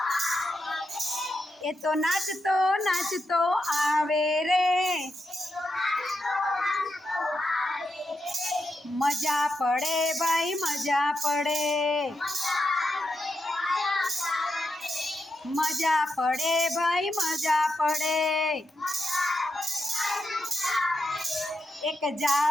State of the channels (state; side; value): normal; both; correlation 0.86